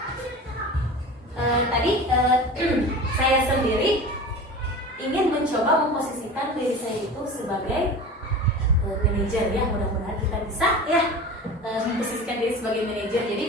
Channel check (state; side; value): normal; both; correlation 0.34